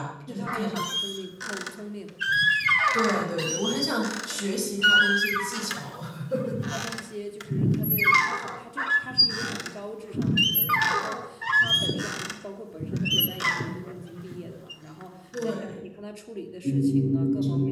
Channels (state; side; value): identical; both; correlation 1.00